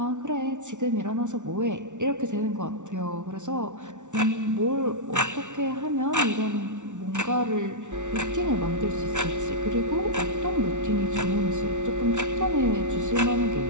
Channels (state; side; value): late; left; 0.86 ms